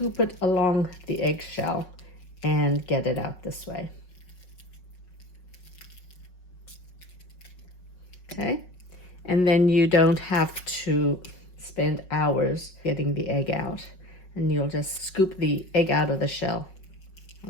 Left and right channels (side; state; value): right; late; 5.4 ms